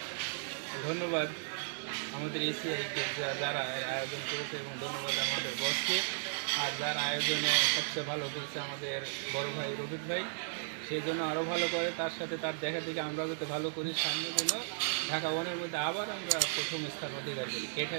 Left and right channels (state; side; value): silent; left; digital silence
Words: ধন্যবাদ আমাদের এসিআইকে যারা আয়োজন করেছে, এবং ধন্যবাদ আমাদের বসকে। আর যারা আয়োজনে সবচেয়ে ভালো করেছে আমাদের বড় ভাই রফিক ভাই, সেই জন্য আরও ভালো করে, তার সাথে তার দেখা থেকে আমরা যাতে ভালো করি, সামনে যেন ঢাকা ওয়ানের মধ্যে আবার আমরা প্রথম স্থান অধিকার করি,